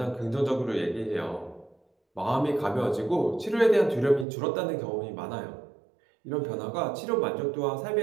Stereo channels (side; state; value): left; drops out; at 4.2 s